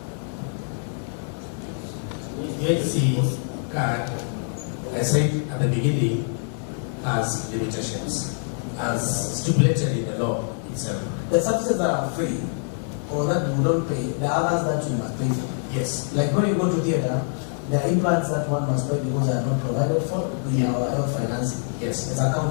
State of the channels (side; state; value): right; silent; 60 dB below the other